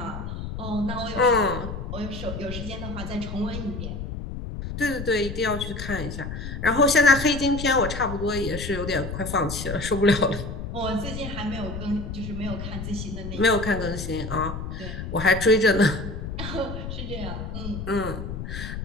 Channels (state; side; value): noise; left; rumble, 7 dB below the sound